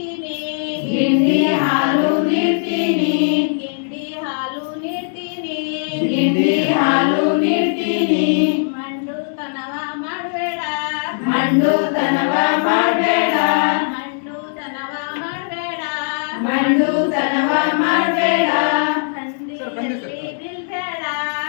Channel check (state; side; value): silent; right; digital silence